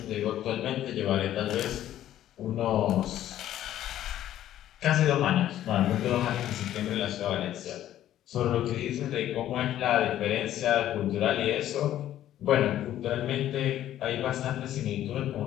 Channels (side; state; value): right; quieter; 12.3 dB